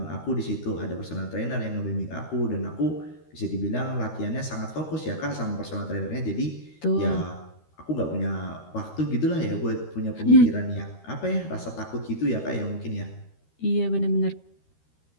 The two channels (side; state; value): right; late; 13 ms